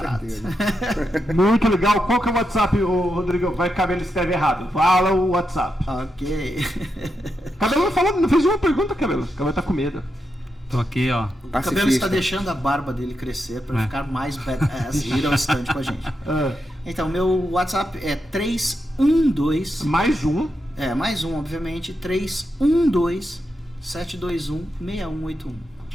Muito legal. Qual que é o WhatsApp, Rodrigo? Vai que o Cabelo escreve errado. Fala o WhatsApp. Ok. Cabelo não fez uma pergunta, Cabelo. O Cabelo tá com medo. Tô aqui, ó. O Cabelo está deixando a barba dele crescer para ficar mais badass e ir ao stand com a gente. Então, meu WhatsApp é 312... Mais um. Mais um, obviamente. 312-721-6181.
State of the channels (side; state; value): both; normal; correlation 0.85